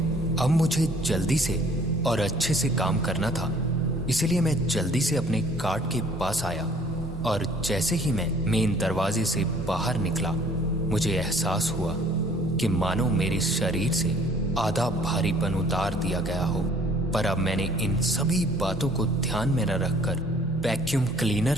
अब मुझे जल्दी से और अच्छे से काम करना था, इसलिए मैं जल्दी से अपने कार्ट के पास आया और जैसे ही मैं मेन दरवाजे से बाहर निकला, मुझे एहसास हुआ कि मानो मेरे शरीर से आधा भारीपन उतार दिया गया हो। पर अब मैंने इन सभी बातों को ध्यान में न रखकर वैक्यूम क्लीनर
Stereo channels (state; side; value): normal; both; correlation 0.56